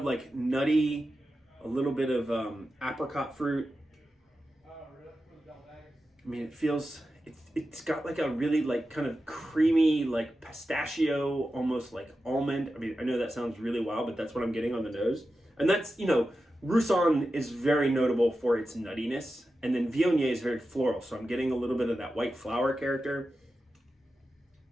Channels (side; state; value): both; normal; correlation 0.91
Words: like nutty, a little bit of apricot fruit. I mean, it's got like a really like kind of creamy, like pistachio, almost like almond. I mean, I know that sounds really wild, but that's what I'm getting on the nose. And that's, Roussanne is very notable for its nuttiness, and then Viognier is very floral, so I'm getting a little bit of that white flower character.